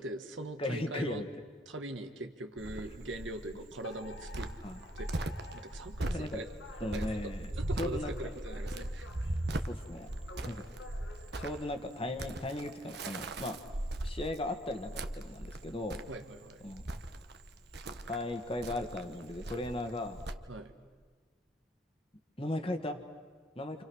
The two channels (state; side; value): normal; both; correlation 0.67